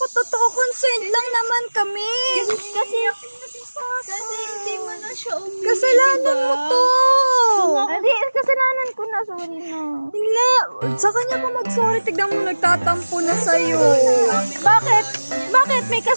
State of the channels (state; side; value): inverted; both; correlation -1.00